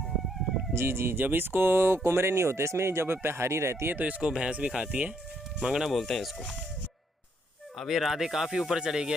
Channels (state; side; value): normal; both; correlation 0.72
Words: जी, जब इसको कुमरे नहीं होते इसमें, जब हरी रहती है तो इसको भैंस भी खाती है। मंगना बोलते हैं इसको। अब ये राधे काफ़ी ऊपर चले